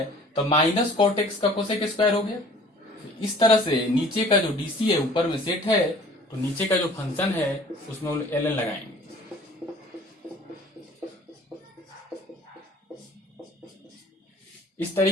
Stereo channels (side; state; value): both; normal; correlation 0.50